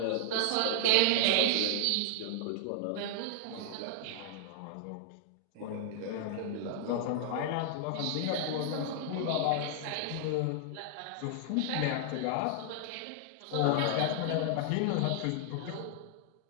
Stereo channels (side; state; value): both; different; correlation -0.01